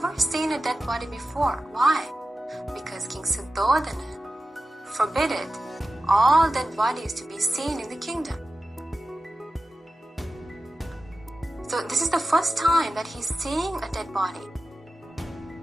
seen a dead body before. Why? Because King Suddhodana forbidden all dead bodies to be seen in the kingdom. So this is the first time that he's seeing a dead body.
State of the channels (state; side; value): normal; both; correlation 0.93